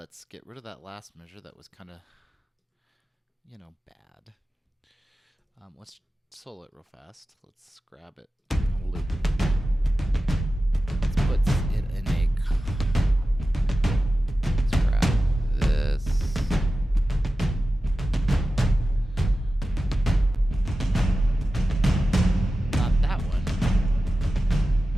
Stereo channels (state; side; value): normal; both; correlation 0.94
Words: get rid of that last measure that was kind of, bad. Let's solo it real fast. Let's grab it on a loop. Let's put it in a. Let's grab this. Not that one.